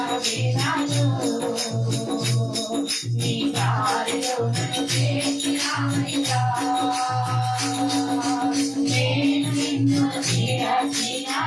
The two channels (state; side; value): identical; both; correlation 1.00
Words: నీ దారిలో నన్ను చేర్చినావయ్యా, నేను నిన్ను